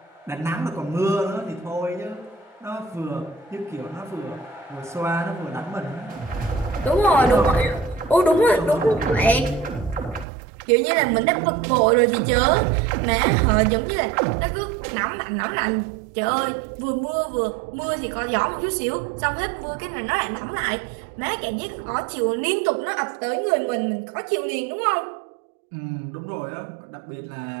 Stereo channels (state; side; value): drops out; left; at 10.2 s